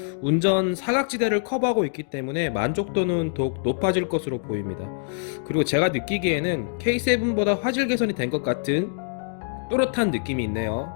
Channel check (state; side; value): silent; right; digital silence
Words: 운전 사각지대를 커버하고 있기 때문에 만족도는 더욱 높아질 것으로 보입니다. 그리고 제가 느끼기에는 K7보다 화질 개선이 된 것 같은 또렷한 느낌이 있네요.